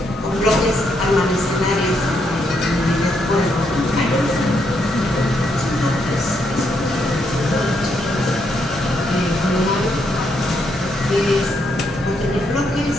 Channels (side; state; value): both; normal; correlation 0.77